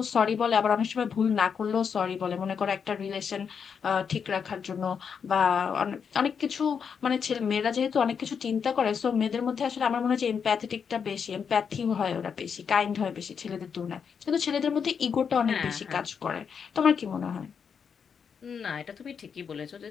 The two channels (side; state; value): right; quieter; 6.7 dB